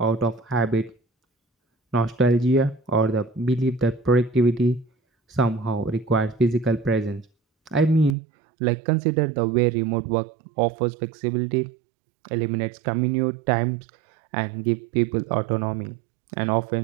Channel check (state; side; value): drops out; left; at 8.2 s